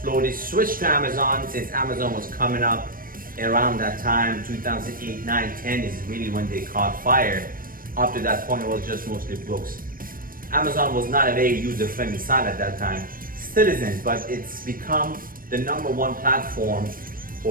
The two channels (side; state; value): left; late; 0.41 ms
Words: slowly switched to Amazon since Amazon was coming up around that time. 2008, 9, 10 is really when they caught fire. Up to that point, it was just mostly books. Amazon was not a very user-friendly site at that time. Still isn't, but it's become the #1 platform